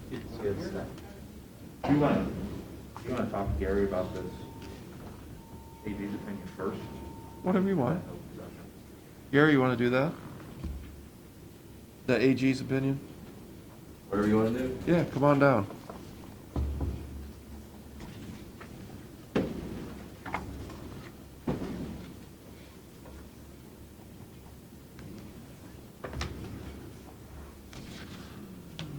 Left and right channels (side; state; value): both; identical; correlation 1.00